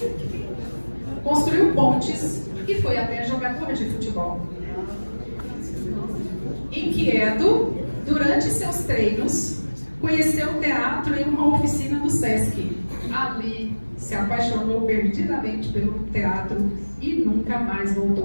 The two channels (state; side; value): inverted; both; correlation -1.00